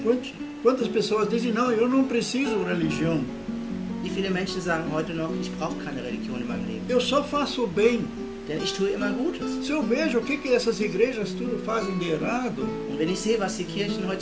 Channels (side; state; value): both; identical; correlation 1.00